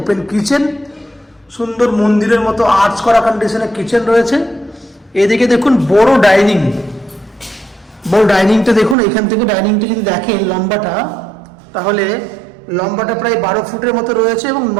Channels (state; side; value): drops out; left; at 9.0 s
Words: কিচেন, সুন্দর মন্দিরের মতো আর্চ করা কন্ডিশনে কিচেন রয়েছে। এদিকে দেখুন বড় ডাইনিং, বড় ডাইনিংটা দেখুন। এখান থেকে ডাইনিংটা যদি দেখেন লম্বাটা, তাহলে লম্বাটা প্রায় 12 ফুটের মতো রয়েছে এবং